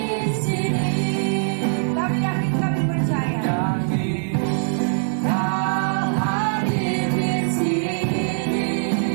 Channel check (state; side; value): silent; left; 64 dB below the other